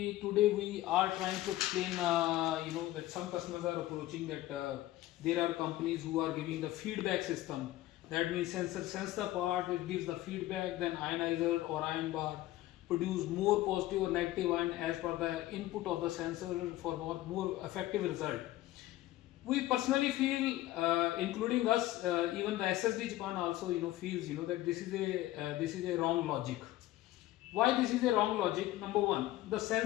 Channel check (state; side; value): quieter; right; 15.9 dB